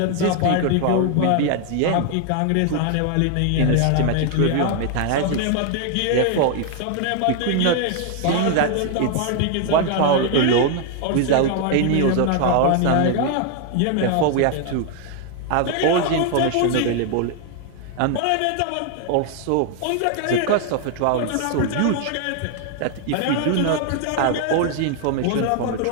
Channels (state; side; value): different; both; correlation 0.00